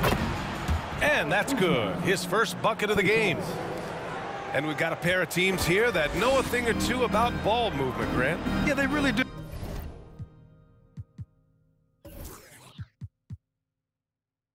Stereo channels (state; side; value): identical; both; correlation 1.00